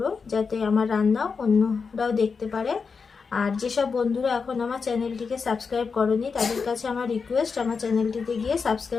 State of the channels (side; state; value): right; quieter; 5.2 dB